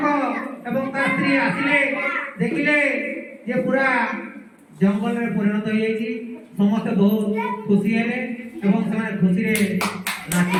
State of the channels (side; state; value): both; identical; correlation 1.00